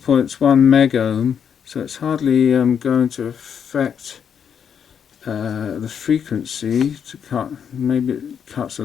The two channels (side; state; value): right; quieter; 7.7 dB